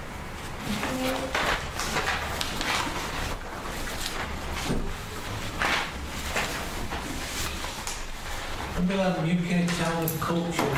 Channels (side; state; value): both; identical; correlation 1.00